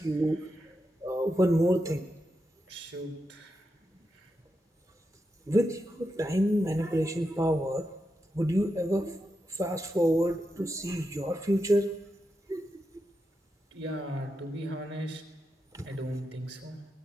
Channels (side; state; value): both; normal; correlation 0.87